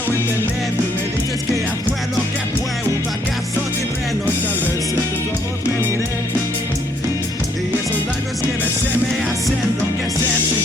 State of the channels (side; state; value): both; normal; correlation 0.68